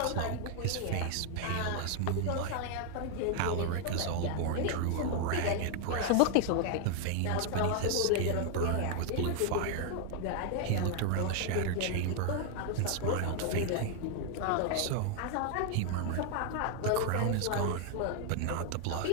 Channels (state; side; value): different; both; correlation 0.00